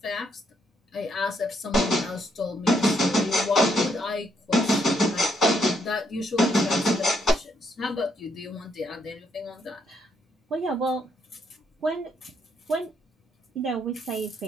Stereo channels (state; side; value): normal; both; correlation 0.74